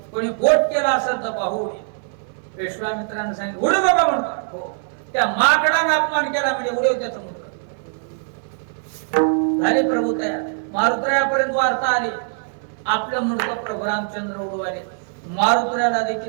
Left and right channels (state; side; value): silent; left; 60 dB below the other